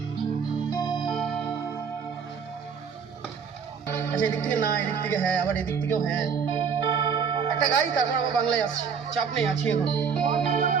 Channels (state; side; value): quieter; left; 6.4 dB